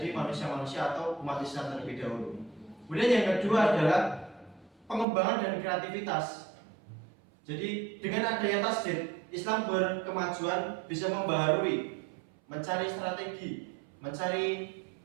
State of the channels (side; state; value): left; drops out; at 5.1 s